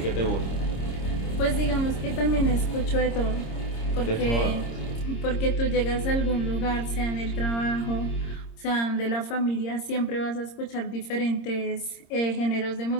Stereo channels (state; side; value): late; right; 26 ms